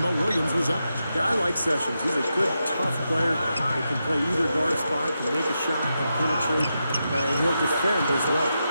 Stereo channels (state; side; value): inverted; both; correlation -0.87